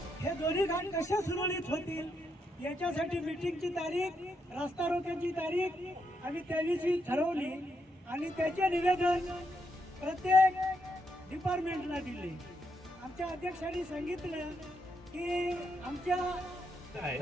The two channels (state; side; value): normal; both; correlation 0.79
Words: हे दोन्ही घाट कसे सुरळीत होतील याच्यासाठी मीटिंगची तारीख, रास्ता रोकोची तारीख आम्ही त्या दिवशी ठरवली आणि त्याचे निवेदन प्रत्येक डिपार्टमेंटला दिले. आमच्या अध्यक्षांनी सांगितलं की